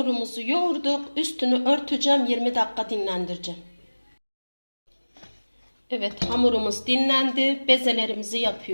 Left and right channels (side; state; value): both; inverted; correlation -1.00